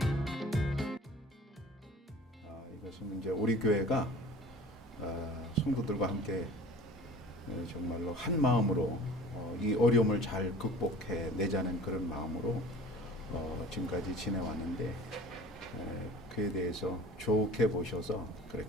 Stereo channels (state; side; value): normal; both; correlation 0.43